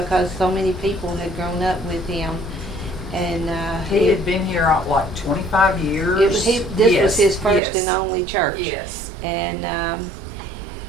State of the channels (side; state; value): left; drops out; at 7.6 s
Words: so many people had grown up with him, and He had been here like 25 years. This was his first and only church. Yes. And